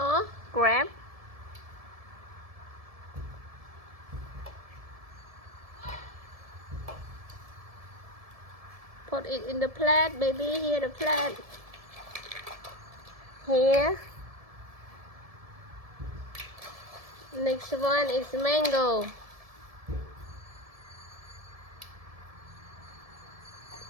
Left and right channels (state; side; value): late; left; 1.7 ms